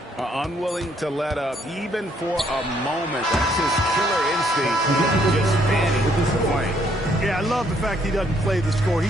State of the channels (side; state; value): both; normal; correlation 0.68